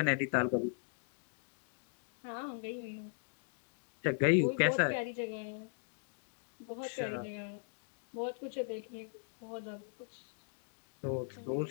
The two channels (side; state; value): right; silent; digital silence